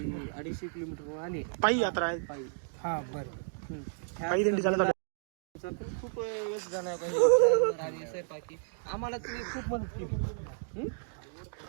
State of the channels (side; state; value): left; silent; digital silence